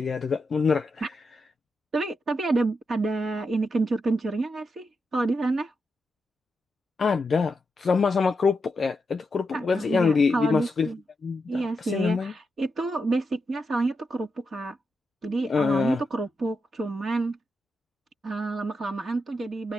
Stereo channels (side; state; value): both; normal; correlation 0.86